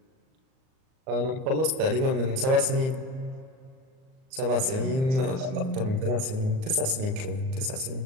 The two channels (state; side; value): late; left; 38 ms